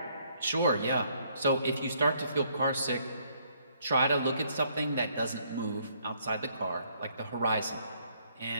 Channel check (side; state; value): both; inverted; correlation -0.68